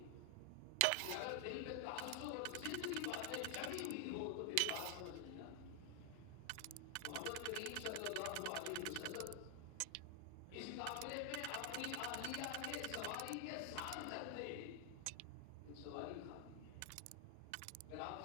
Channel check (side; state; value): both; different; correlation 0.00